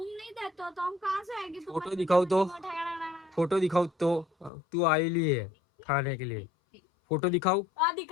नहीं देते हो तो हम कहाँ से आएंगे? फोटो दिखाओ तो। फोटो दिखाओ तो। तू आई ली है खाने के लिए। फोटो दिखाओ।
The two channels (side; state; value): right; drops out; at 4.5 s